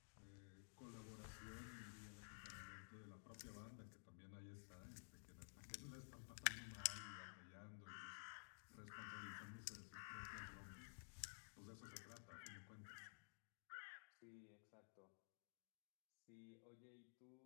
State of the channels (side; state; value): right; silent; digital silence